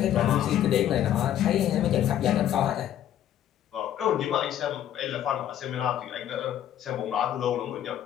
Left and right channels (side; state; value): right; quieter; 11.2 dB